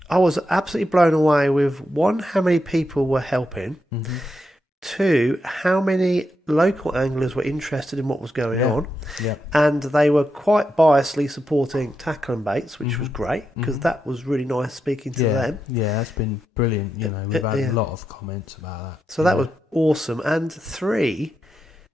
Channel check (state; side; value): normal; both; correlation 0.85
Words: I was absolutely blown away with 1, how many people were helping. 2, how many local anglers were interested in what was going on. Yeah. And they were quite biasly supporting tackle and baits, which was great because that was really nice speaking to them. Yeah, that's been brilliant. You know, we've had a lot of comments about that. So that was awesome. And 3,